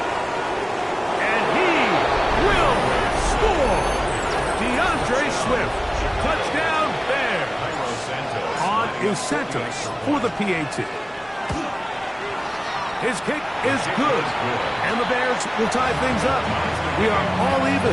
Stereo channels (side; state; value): both; identical; correlation 1.00